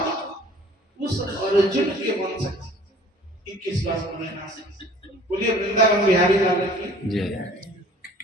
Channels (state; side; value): normal; both; correlation 0.51